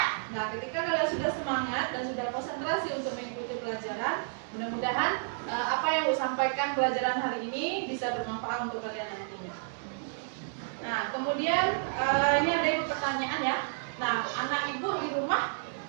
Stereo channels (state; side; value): silent; left; digital silence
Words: Nah, ketika kalian sudah semangat dan sudah konsentrasi untuk mengikuti pelajaran, mudah-mudahan apa yang saya sampaikan pelajaran hari ini bisa bermanfaat untuk kalian nantinya. Nah, kemudian ini ada ibu pertanyaan ya. Nah, anak ibu di rumah